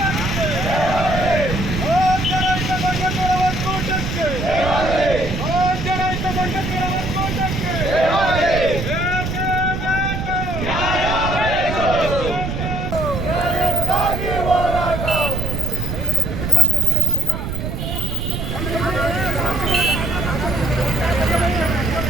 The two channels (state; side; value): noise; right; rumble, 4 dB below the sound